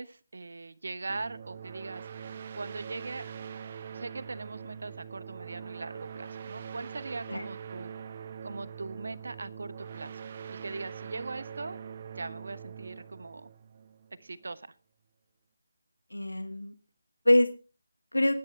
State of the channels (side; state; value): both; inverted; correlation -0.95